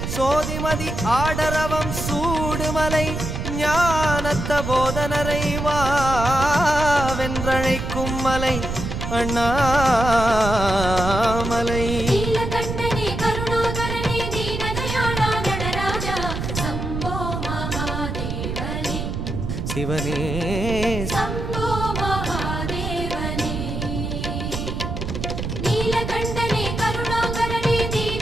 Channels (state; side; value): noise; right; rumble, 4 dB below the sound